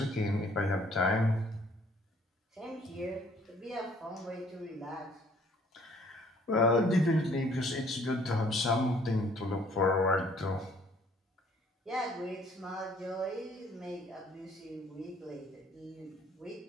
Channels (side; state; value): both; normal; correlation 0.60